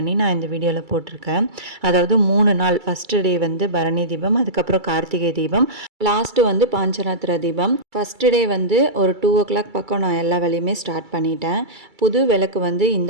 நான் இந்த வீடியோவில் போட்டிருக்கேன். அதாவது 3 நாள். ஃபஸ்ட்டு டே பரணி தீபம், அதுக்கப்புறம் கார்த்திகை தீபம், லாஸ்ட்டு பாஞ்சராத்திர தீபம். ஃபஸ்ட்டு டே ஒரு 2 o'clock பக்கம் நான் எல்லா வேலையுமே ஸ்டார்ட் பண்ணிட்டேன். புது விளக்கு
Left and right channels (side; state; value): left; late; 2.3 ms